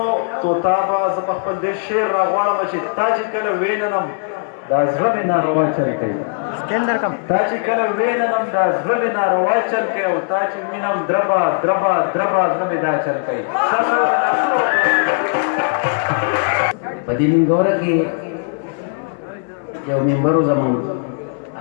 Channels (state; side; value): silent; right; 61 dB below the other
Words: توتا به زه په خپل دې شعر راغواړم چې تا چې کله ویننم دا زړه مې ناروا چل کوي تا چې کله ویننم دا زړه مې ناروا چل کوي او تا چې وینم دربه دربه دربه زړه مې دا چل کوي په دې منګوره کې یو ممبر و زمونږ